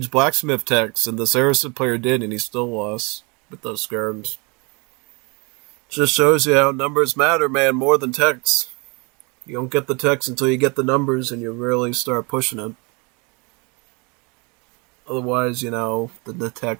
Blacksmith techs, and the Saracen player did, and he still lost with those skirms. Just shows you how numbers matter, man, more than techs. You don't get the techs until you get the numbers, and you really start pushing it. Otherwise, the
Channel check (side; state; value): left; quieter; 30.0 dB